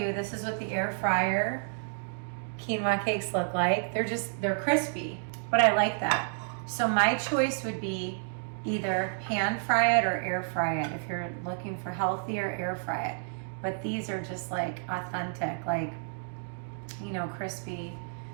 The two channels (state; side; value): silent; left; digital silence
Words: this is what the air fryer quinoa cakes look like. They're crispy, but I like that. So my choice would be either pan fry it or air fry it. If you're looking for healthier, air fry it. But these are just like authentic, like, you know, crispy